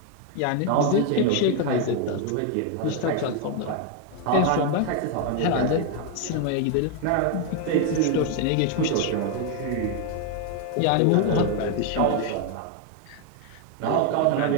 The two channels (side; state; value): both; different; correlation 0.01